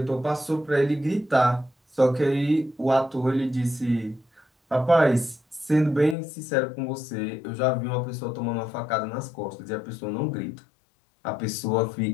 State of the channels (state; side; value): drops out; right; at 6.2 s